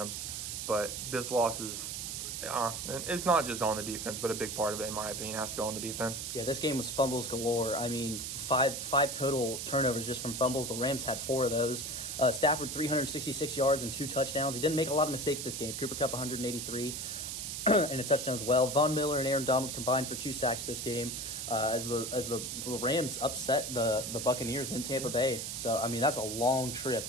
But this loss is, it's not just on the defense, but a big part of it, in my opinion, has to go on the defense. Yeah, this game was fumbles galore. I mean, five total turnovers just from fumbles. The Rams had 4 of those. Stafford, 366 yards and 2 touchdowns. He didn't make a lot of mistakes this game. Cooper Kupp, 183 and a touchdown as well. Von Miller and Aaron Donald combined for 2 sacks this game. As the Rams upset the Buccaneers in Tampa Bay. So, I mean, that's a long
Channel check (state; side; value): noise; right; hiss, 5 dB below the sound